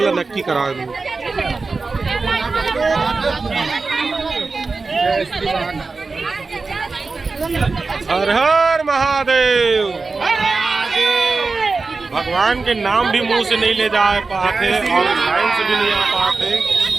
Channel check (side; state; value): left; quieter; 4.1 dB